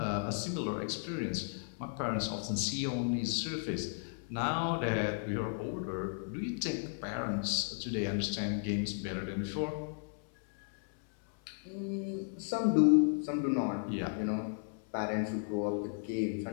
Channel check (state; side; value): silent; right; 55 dB below the other